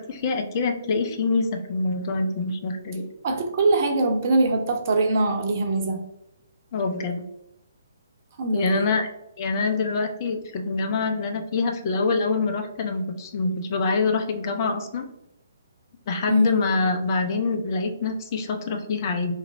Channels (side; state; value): both; inverted; correlation -0.70